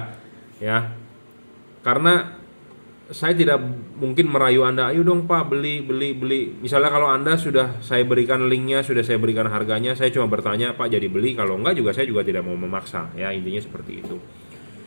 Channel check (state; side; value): inverted; both; correlation -1.00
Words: ya. Karena saya tidak mungkin merayu Anda, ayo dong Pak beli. Misalnya kalau Anda sudah saya berikan linknya, sudah saya berikan harganya, saya cuma bertanya Pak jadi beli. Kalau enggak juga saya juga tidak mau memaksa, ya intinya seperti itu.